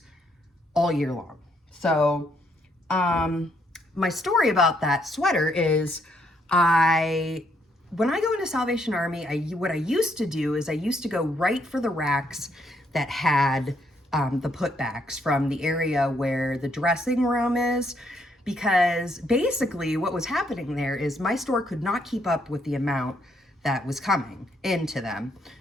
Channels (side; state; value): both; normal; correlation 0.73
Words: all year long. So my story about that sweater is when I go into Salvation Army, what I used to do is I used to go right for the racks that had the putbacks from the area where the dressing room is, because basically what was happening there is my store could not keep up with the amount that was coming into them